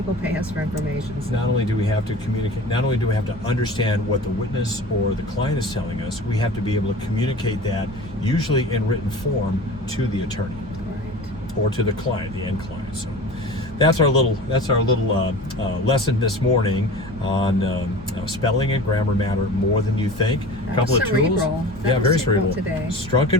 pay us for information. So. Not only do we have to communicate, not only do we have to understand what the witness or the client is telling us, we have to be able to communicate that, usually in written form, to the attorney. Right. Or to the client, the end client. So that's our little lesson this morning on spelling and grammar matter more than you think. A couple of tools. Very cerebral today. Strunk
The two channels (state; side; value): normal; both; correlation 0.37